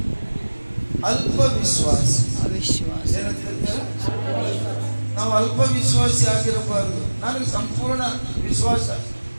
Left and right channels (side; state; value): both; inverted; correlation -1.00